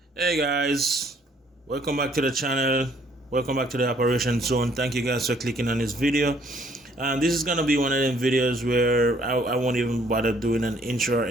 Hey guys, welcome back to the channel. Welcome back to the operation zone. Thank you guys for clicking on this video. This is gonna be one of them videos where I won't even bother doing an intro or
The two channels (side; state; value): both; normal; correlation 0.63